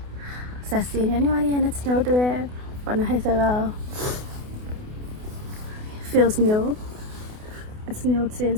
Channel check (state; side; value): late; left; 28 ms